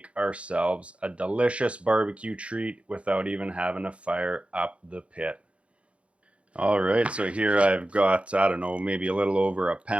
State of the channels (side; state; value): left; late; 0.061 ms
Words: ourselves a delicious barbecue treat without even having to fire up the pit. All right, so here I've got, I don't know, maybe a little over a